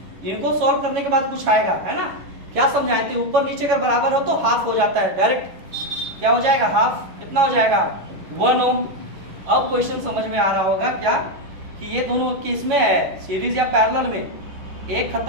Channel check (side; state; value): left; late; 11 ms